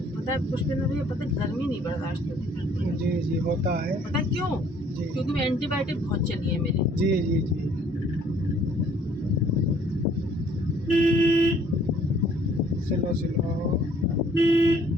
है पुष्पेंद्र भैया, पता है गर्मी नहीं बर्दाश्त होती। जी जी होता है। पता है क्यों? जी क्योंकि मैं एंटीबायोटिक बहुत चली है मेरी। जी जी जी स्लो स्लो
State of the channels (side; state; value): both; normal; correlation 0.60